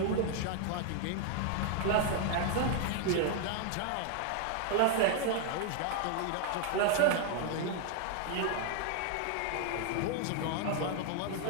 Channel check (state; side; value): different; both; correlation 0.00